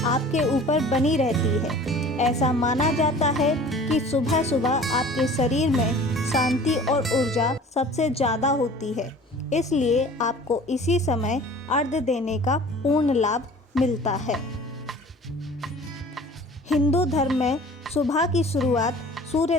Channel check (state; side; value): normal; both; correlation 0.45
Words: आपके ऊपर बनी रहती है। ऐसा माना जाता है कि सुबह सुबह आपके शरीर में शांति और ऊर्जा सबसे ज़्यादा होती है, इसलिए आपको इसी समय अर्घ्य देने का पूर्ण लाभ मिलता है। हिंदू धर्म में सुबह की शुरुआत सूर्य